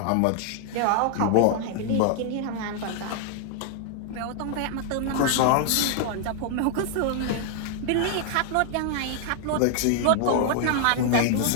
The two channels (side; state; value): both; different; correlation 0.00